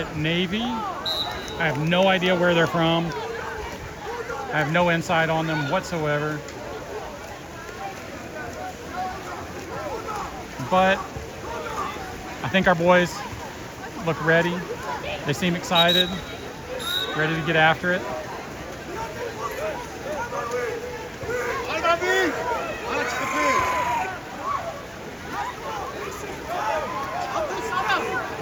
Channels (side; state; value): both; identical; correlation 1.00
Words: Navy. I have no idea where they're from. I have no insight on them whatsoever. But I think our boys look ready. They seem excited, ready to get after it.